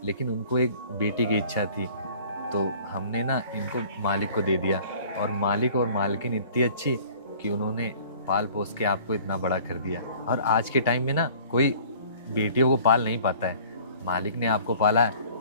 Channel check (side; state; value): both; inverted; correlation -0.50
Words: लेकिन उनको एक बेटी की इच्छा थी, तो हमने ना इनको मालिक को दे दिया। और मालिक और मालकिन इतनी अच्छी कि उन्होंने पाल पोस के आपको इतना बड़ा कर दिया। और आज के टाइम में ना कोई बेटियों को पाल नहीं पाता है, मालिक ने आपको पाला है,